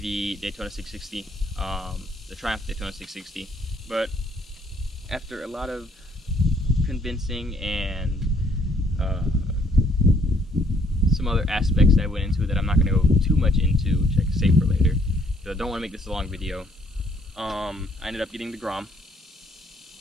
Daytona 660, the Triumph Daytona 660, but after a lot of convincing and some other aspects that I went into that I'm not going to go too much into, which I can save for later, because I don't want to make this a long video. I ended up getting the Grom.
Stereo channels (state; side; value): normal; both; correlation 0.65